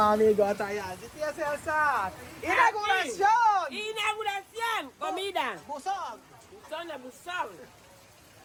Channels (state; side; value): identical; both; correlation 1.00